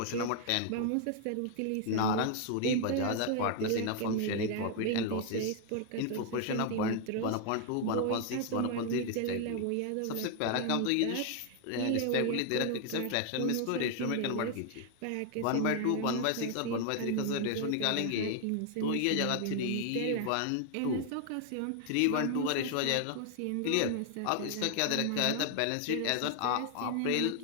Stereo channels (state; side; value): different; both; correlation 0.00